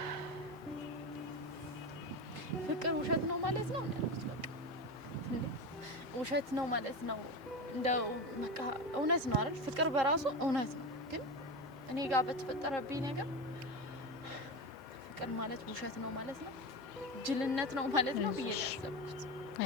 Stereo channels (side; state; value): both; normal; correlation 0.21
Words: ፍቅር ውሸት ነው ማለት ነው ያልኩት። በቃ ውሸት ነው ማለት ነው እንደው በቃ እውነት ነው አይደል? ፍቅር በራሱ እውነት ነው። ግን እኔ ጋር በተፈጠረብኝ ነገር ፍቅር ማለት ውሸት ነው ማለት ነው፣ ጅልነት ነው ማለት ነው ብዬ ያሰብኩት።